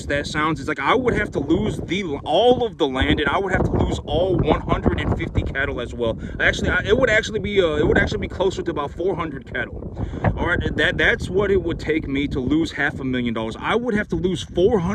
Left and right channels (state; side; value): identical; both; correlation 1.00